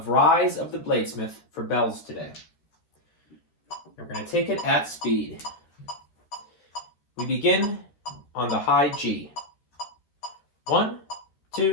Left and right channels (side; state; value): right; late; 13 ms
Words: Rise of the Bladesmith for bells today. We're going to take it at speed. We begin on the high G. 1,